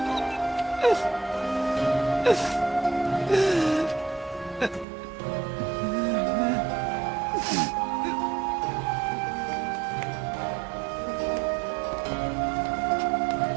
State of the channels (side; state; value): left; drops out; at 4.9 s